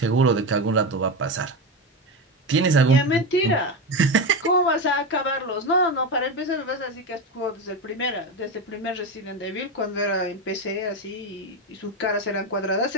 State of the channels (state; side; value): normal; both; correlation 0.16